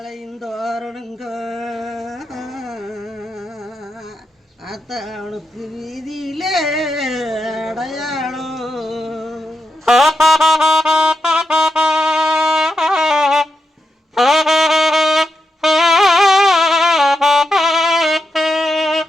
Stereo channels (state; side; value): normal; both; correlation 0.86